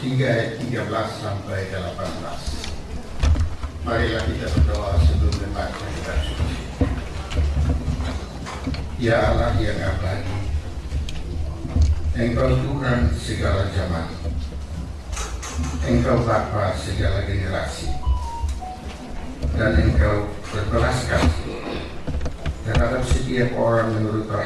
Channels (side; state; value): both; identical; correlation 1.00